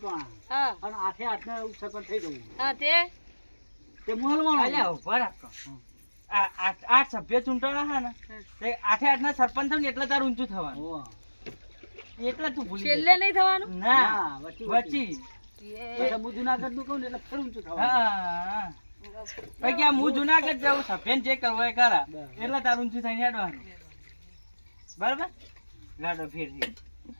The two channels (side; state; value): both; inverted; correlation -1.00